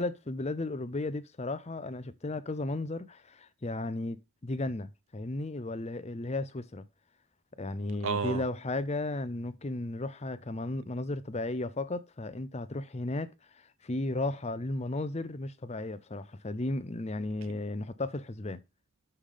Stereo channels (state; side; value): normal; both; correlation 0.52